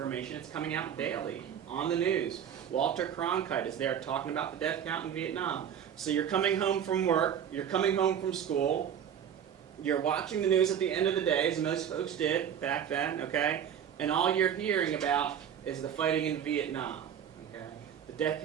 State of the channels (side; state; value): left; quieter; 8.8 dB